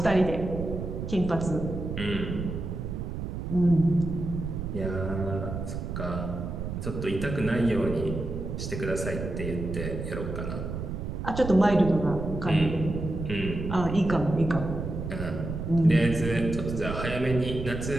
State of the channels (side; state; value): right; noise; rumble, 5 dB below the sound